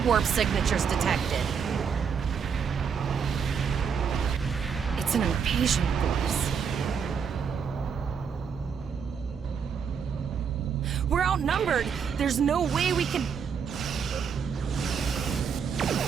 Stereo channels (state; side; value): quieter; left; 6.7 dB